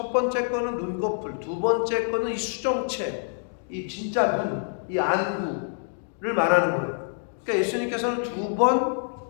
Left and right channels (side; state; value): right; silent; digital silence